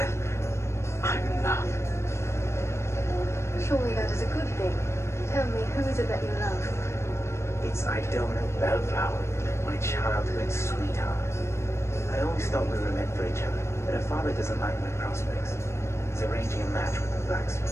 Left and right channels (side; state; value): right; late; 0.13 ms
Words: I'm in love. Surely that is a good thing. Tell me, who is it that you love? It's Idona Bellflower, my childhood sweetheart. I always thought we were meant for each other, but her father doesn't like my prospects. He's arranging a match with the